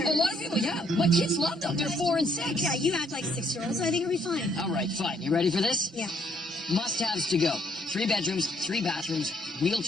A lot of people, yeah. My kids love them. They're 4 and 6. Yeah, you act like 6-year-olds, so I think it'll be fine. All right, fine. You ready for this? Yeah. Must-haves to go. 3 bedrooms, 3 bathrooms,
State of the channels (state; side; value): normal; both; correlation 0.69